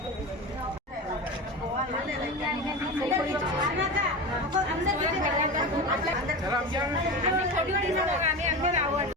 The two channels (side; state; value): both; normal; correlation 0.26